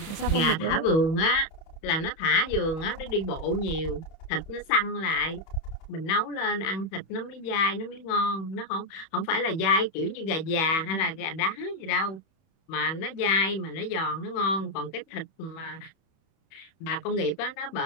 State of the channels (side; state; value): right; late; 31 ms